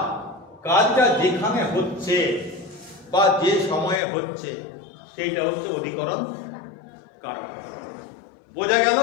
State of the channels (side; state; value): right; drops out; at 4.0 s